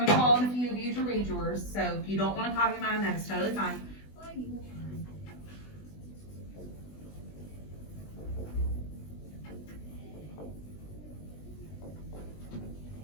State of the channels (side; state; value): right; late; 20 ms